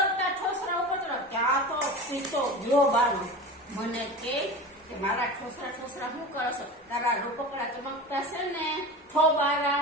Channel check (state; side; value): normal; both; correlation 0.30